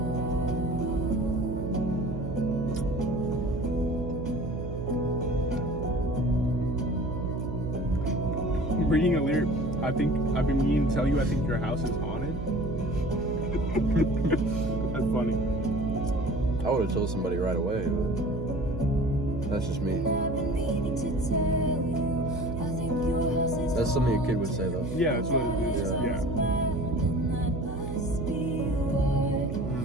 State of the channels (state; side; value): noise; right; hum, 6 dB below the sound